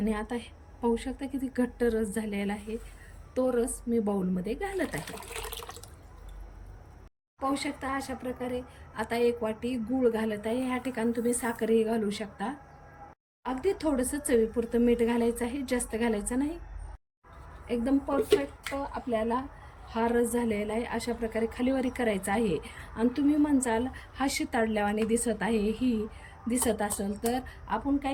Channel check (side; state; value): both; identical; correlation 1.00